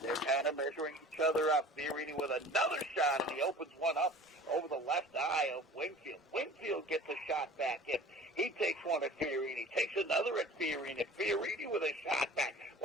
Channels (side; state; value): both; normal; correlation 0.43